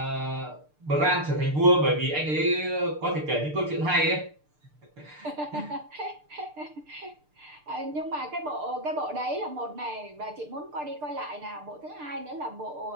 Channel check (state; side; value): late; left; 6.7 ms